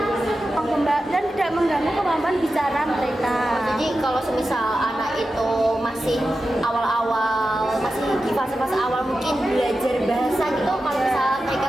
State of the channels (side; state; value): both; normal; correlation 0.92